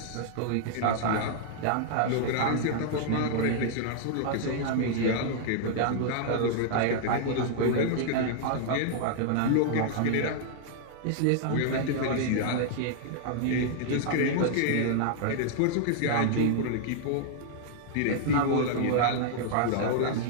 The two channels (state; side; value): different; both; correlation -0.01